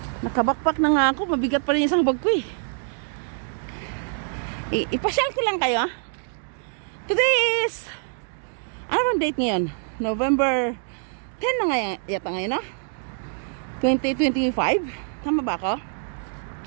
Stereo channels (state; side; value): silent; left; 62 dB below the other